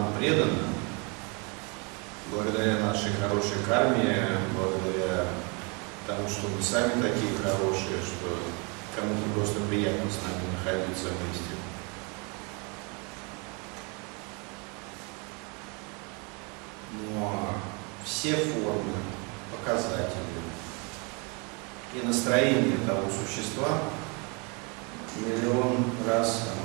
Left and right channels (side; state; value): left; quieter; 32.2 dB